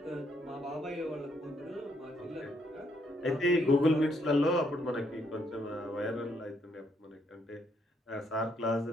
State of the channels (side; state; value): both; normal; correlation 0.73